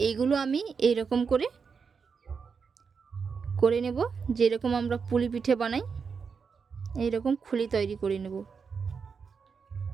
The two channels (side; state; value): left; quieter; 5.7 dB